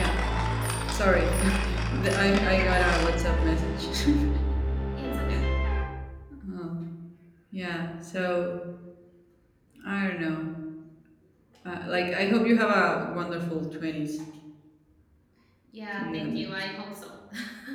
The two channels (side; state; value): both; identical; correlation 1.00